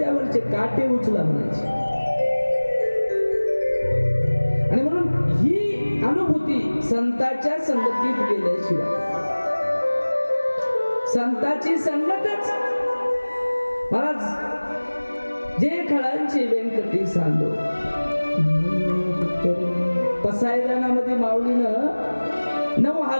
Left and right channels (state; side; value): inverted; both; correlation -1.00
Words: काटे उचला म्हणायचे. आणि म्हणून ही अनुभूती संतांच्या संगतीत गेल्याशिवाय, संतांची संगतच. महाराज जे खळांची व्यंकटी सांडो, पसायदानामध्ये माऊलीनं